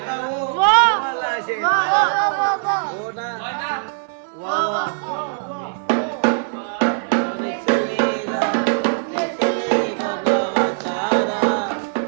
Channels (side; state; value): left; silent; 59 dB below the other